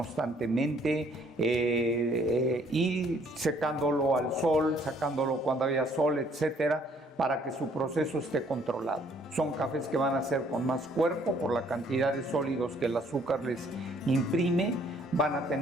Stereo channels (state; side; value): normal; both; correlation 0.63